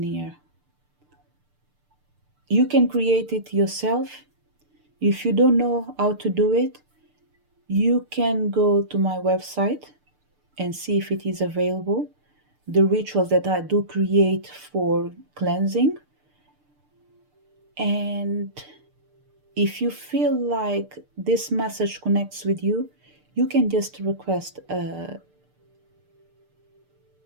here. You can create it yourself. If you don't know how to do it, you can go to my website and see if it is available. The rituals that I do create for cleansing. And if you feel like this message connects with you, you can just request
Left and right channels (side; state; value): left; late; 6.7 ms